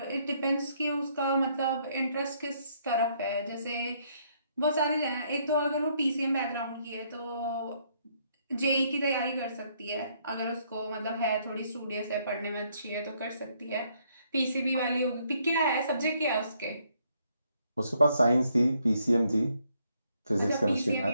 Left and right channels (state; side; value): inverted; both; correlation -0.70